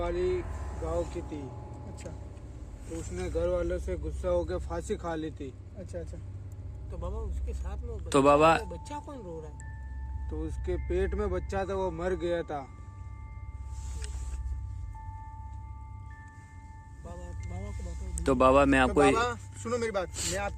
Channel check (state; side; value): identical; both; correlation 1.00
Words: गांव की थी। अच्छा, तो उसने घर वालों से गुस्सा होकर फांसी खा ली थी। अच्छा। तो बाबा उसके साथ में तो बाबा बच्चा कौन रो रहा है? तो उसके पेट में बच्चा था, वो मर गया था। बाबा बाबा को बताओ। तो बाबा मैं तो आपको बाबा सुनो मेरी बात, मैं